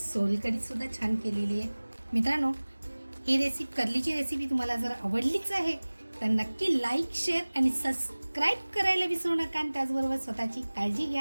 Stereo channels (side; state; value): both; inverted; correlation -1.00